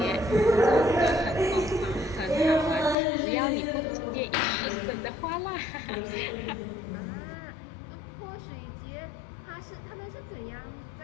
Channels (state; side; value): drops out; right; at 3.0 s